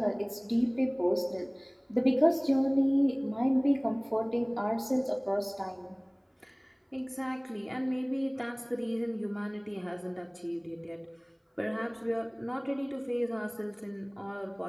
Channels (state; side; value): identical; both; correlation 1.00